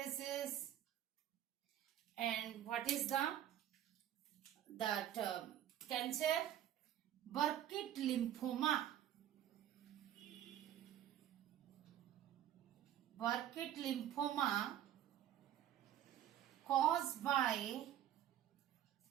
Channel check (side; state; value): left; quieter; 11.3 dB